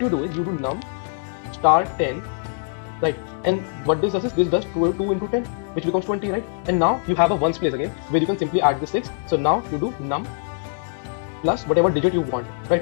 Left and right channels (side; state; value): right; silent; digital silence